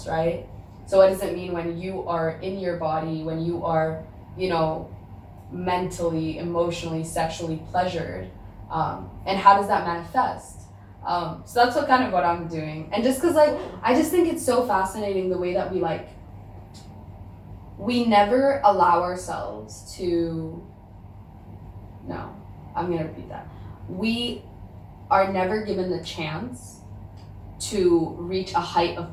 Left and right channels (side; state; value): both; identical; correlation 1.00